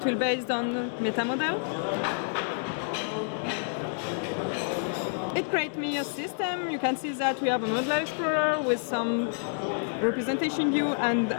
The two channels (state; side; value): silent; right; digital silence